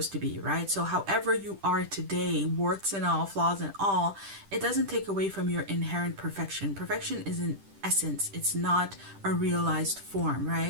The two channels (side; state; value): left; late; 10 ms